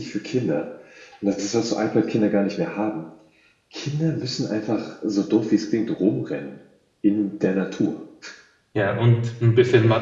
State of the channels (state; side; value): identical; both; correlation 1.00